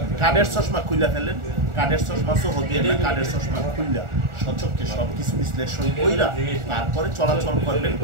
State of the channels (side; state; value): left; late; 1.4 ms